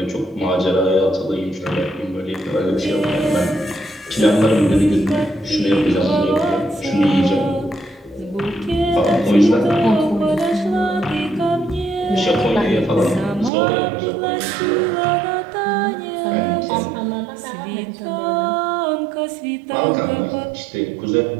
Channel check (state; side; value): drops out; left; at 13.5 s